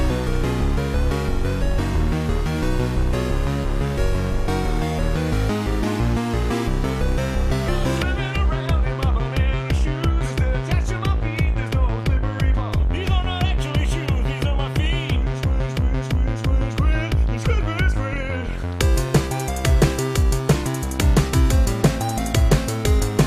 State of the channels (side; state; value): both; identical; correlation 1.00